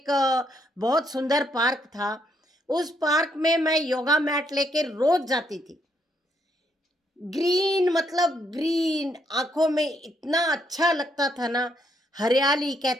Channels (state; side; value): normal; both; correlation 0.74